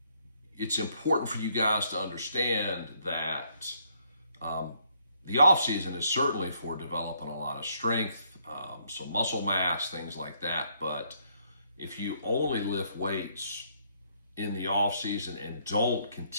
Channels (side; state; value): both; inverted; correlation -0.70